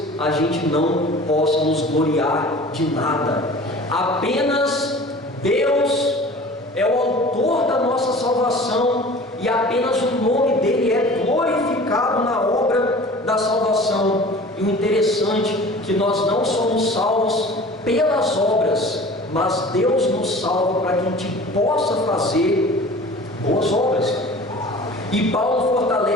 a gente não possa nos gloriar de nada. Apenas Deus é o autor da nossa salvação, e apenas o nome dele é glorificado na obra da salvação. E o interessante é que nós não somos salvos pelas obras, mas Deus nos salva para que a gente possa fazer boas obras. E Paulo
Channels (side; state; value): both; normal; correlation 0.43